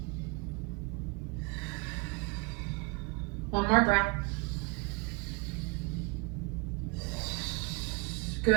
One more breath.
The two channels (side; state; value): left; quieter; 29.8 dB